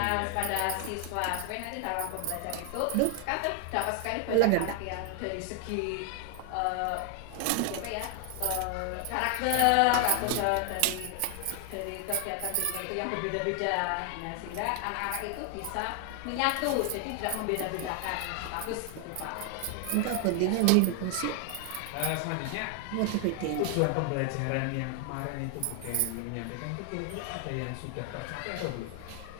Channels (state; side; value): different; both; correlation 0.00